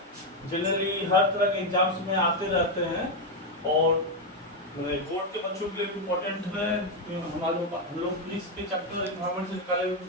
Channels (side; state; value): both; normal; correlation 0.04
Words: जनरली हर तरह के एग्जाम्स में आते रहते हैं और बोर्ड के बच्चों के लिए इम्पोर्टेंट है। हम लोग फिजिक्स के चैप्टर एनवायरनमेंट से निकाले हुए